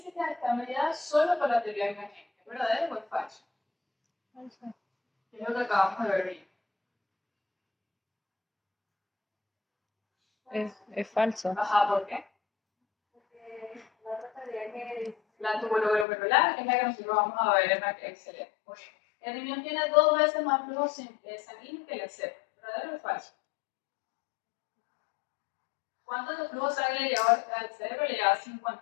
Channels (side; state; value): right; drops out; at 16.1 s